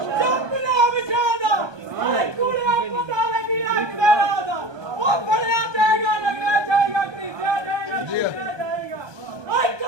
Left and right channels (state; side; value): late; left; 1.2 ms